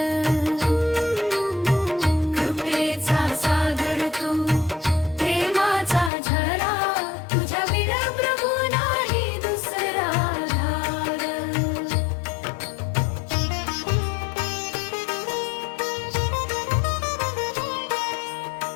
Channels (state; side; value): drops out; right; at 6.1 s